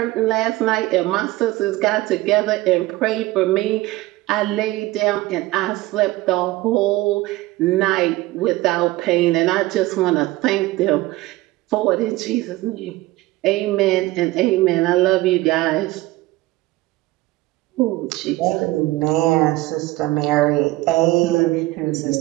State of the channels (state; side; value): quieter; left; 18.7 dB